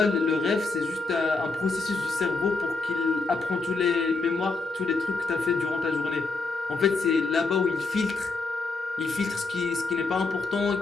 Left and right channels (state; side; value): quieter; right; 3.8 dB